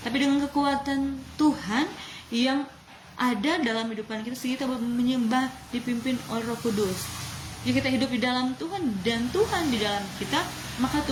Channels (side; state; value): both; identical; correlation 1.00